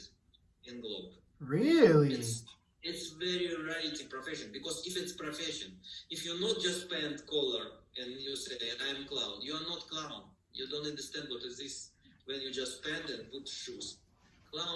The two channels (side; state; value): both; identical; correlation 1.00